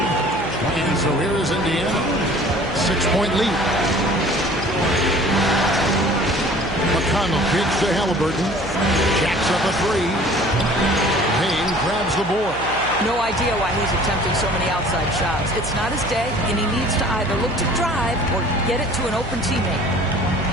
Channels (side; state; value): right; noise; hum, 12 dB below the sound